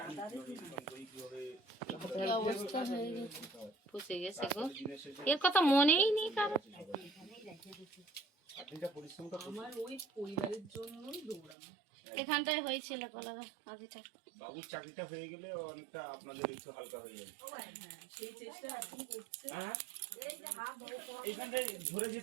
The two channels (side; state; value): left; drops out; at 11.6 s